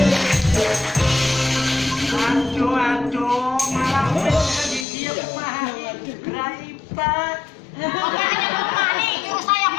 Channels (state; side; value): drops out; right; at 4.9 s